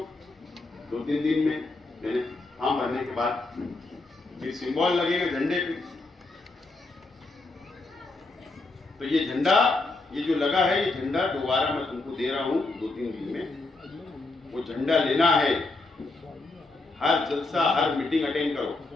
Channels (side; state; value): right; quieter; 3.3 dB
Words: 2-3 दिन में मैंने फॉर्म भरने के बाद फिर सिंबल लगेगा झंडे पे। तो ये झंडा, ये जो लगा है, ये झंडा दोबारा मैं तुमको दे रहा हूं 2-3 दिन में। वो झंडा लेना है, हर जलसा हर मीटिंग अटेंड करो,